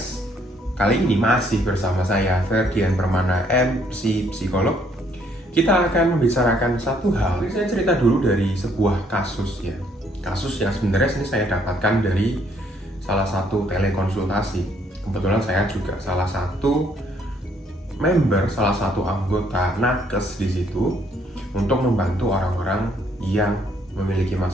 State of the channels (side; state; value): both; normal; correlation 0.67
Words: Kali ini masih bersama saya Ferdian Permana, MC Psikolog. Kita akan membicarakan satu hal. Saya cerita dulu dari sebuah kasus ya. Kasus yang sebenarnya ini saya dapatkan dari salah satu telekonsultasi. Kebetulan saya juga salah satu member, salah satu anggota nakes di situ untuk membantu orang-orang yang memiliki